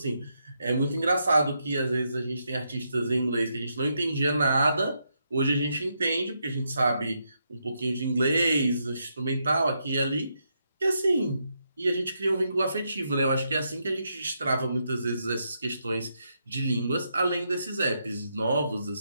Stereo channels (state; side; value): inverted; both; correlation -0.81